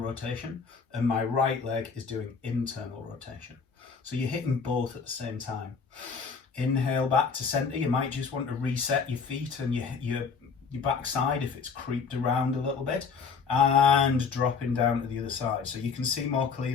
rotation and my right leg is doing internal rotation. So you're hitting both at the same time. Inhale back to center. You might just want to reset your feet and your backside if it's creeped around a little bit, and dropping down to the other side. So you can see more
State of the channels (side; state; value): right; quieter; 5.5 dB